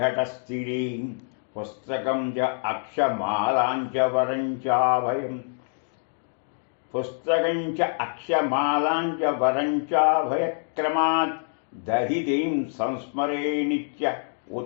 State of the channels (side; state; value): right; silent; 61 dB below the other